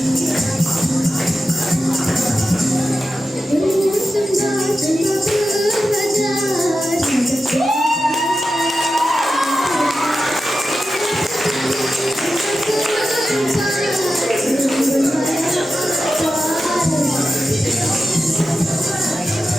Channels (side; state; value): both; normal; correlation 0.91